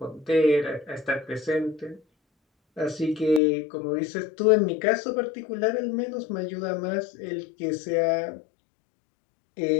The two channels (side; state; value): right; drops out; at 3.4 s